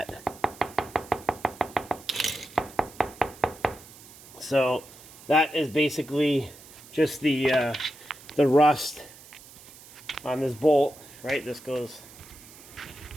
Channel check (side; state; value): right; noise; hiss, 20 dB below the sound